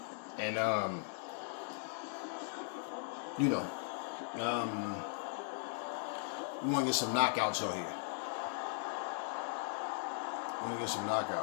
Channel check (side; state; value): right; silent; digital silence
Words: And, you know, we want to get some knockouts on here.